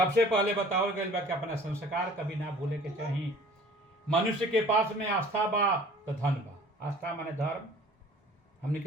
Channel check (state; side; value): normal; both; correlation 0.50